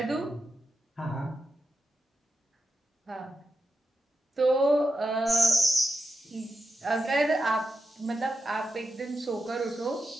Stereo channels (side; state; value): both; normal; correlation 0.87